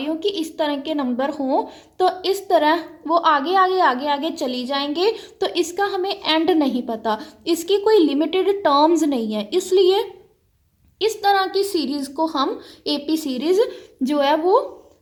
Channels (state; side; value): identical; both; correlation 1.00